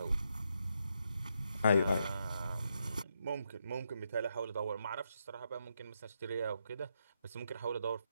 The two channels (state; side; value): inverted; both; correlation -0.81